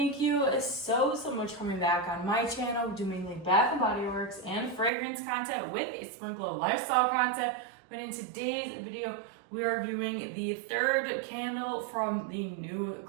you so much for coming back on my channel. We do mainly Bath and Body Works and fragrance content with a sprinkle of lifestyle content. But in today's video, we are reviewing the third candle from the new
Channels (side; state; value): left; drops out; at 4.9 s